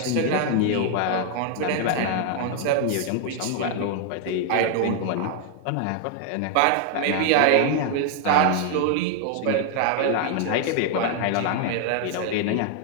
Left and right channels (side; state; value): both; different; correlation 0.00